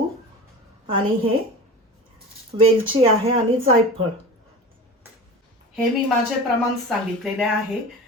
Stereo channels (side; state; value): both; normal; correlation 0.34